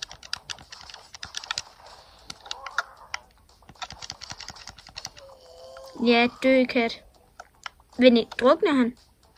Ja, dø kat. Men drukner han?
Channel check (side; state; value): both; identical; correlation 1.00